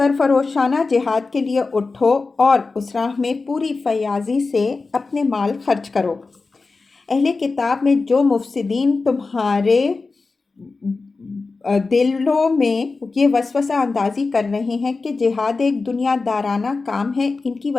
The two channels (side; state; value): right; quieter; 4.0 dB